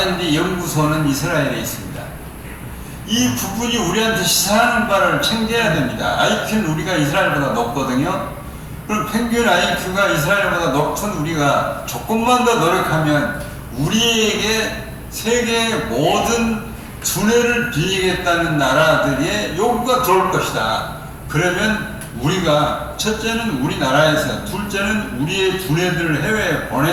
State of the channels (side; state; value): both; identical; correlation 1.00